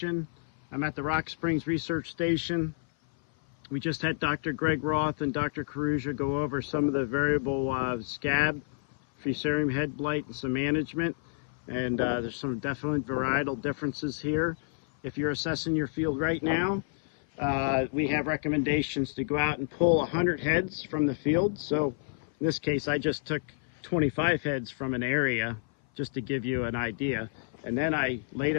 I'm at the Rock Springs Research Station. We just had Dr. Greg Roth and Dr. Caruja go over some of the variable scab, fusarium head blight, and some management. And there's some definite varietal differences here. If you're assessing your field right now, we have recommendations to go out and pull 100 heads from the field. So in this case, I just took 25 heads from an area just to give you an idea. And then I laid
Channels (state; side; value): silent; right; 56 dB below the other